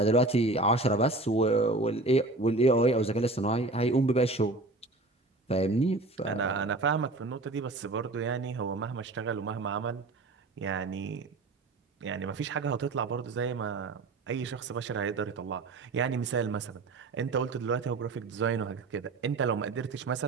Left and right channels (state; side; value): quieter; left; 3.1 dB